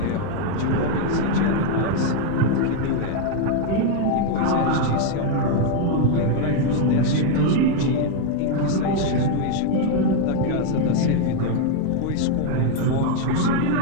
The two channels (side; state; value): both; different; correlation 0.01